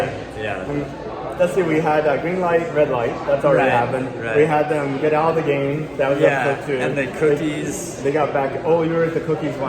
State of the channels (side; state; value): both; identical; correlation 1.00